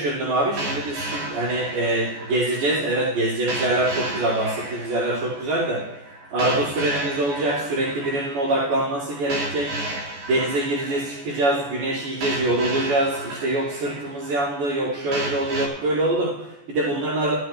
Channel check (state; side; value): late; left; 14 ms